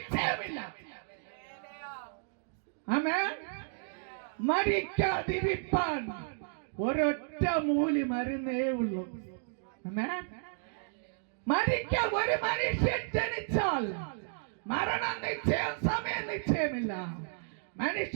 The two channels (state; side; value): silent; left; digital silence